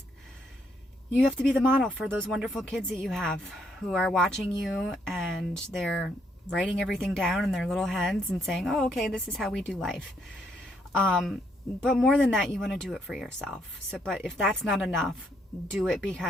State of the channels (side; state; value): both; normal; correlation 0.73